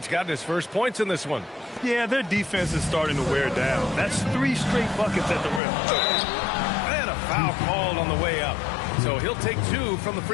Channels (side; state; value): right; drops out; at 5.6 s